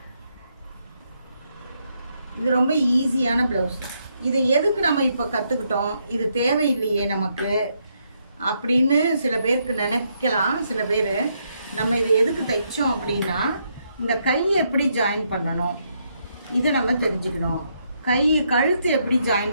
இது ரொம்ப ஈஸியான ப்ளவுஸ். இதை எதுக்கு நம்ம இப்போ கற்றுக்கிட்டோம், இது தேவையில்லையே நமக்கு அப்படின்னு சில பேருக்கு நினைக்கலாம். சில பேர் நம்ம இதை எதுக்கு தைச்சோம் அப்படின்னா, இந்த கை எப்படி ஜாயின் பண்ணணும் இதை நம்ம தெரிஞ்சுக்கணும். கழுத்து எப்படி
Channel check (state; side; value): inverted; both; correlation -0.77